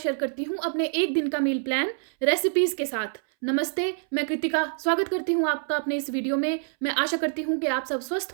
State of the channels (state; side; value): silent; left; 61 dB below the other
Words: करती हूँ अपने एक दिन का मील प्लान रेसिपीज़ के साथ। नमस्ते, मैं कृतिका स्वागत करती हूँ आपका अपने इस वीडियो में। मैं आशा करती हूँ कि आप सब स्वस्थ